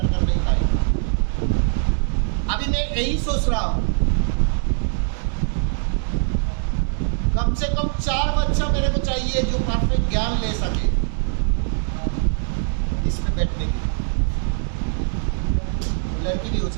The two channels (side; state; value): left; silent; digital silence